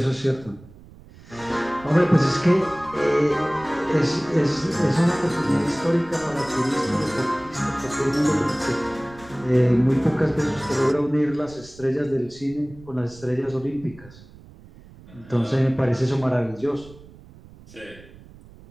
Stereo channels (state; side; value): noise; right; rumble, 21 dB below the sound